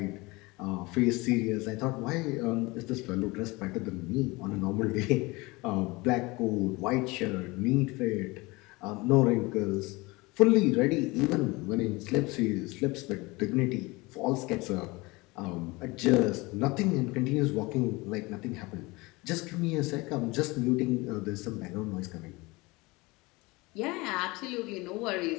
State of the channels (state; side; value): quieter; right; 23.6 dB